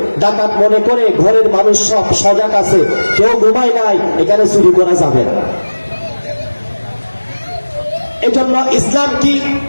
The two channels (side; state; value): both; inverted; correlation -1.00